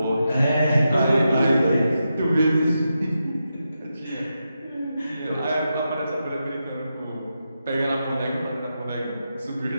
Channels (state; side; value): inverted; both; correlation -0.87